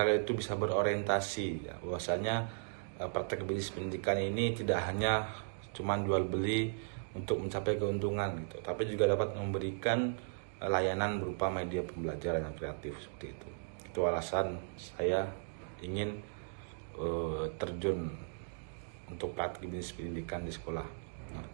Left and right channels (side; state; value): left; silent; digital silence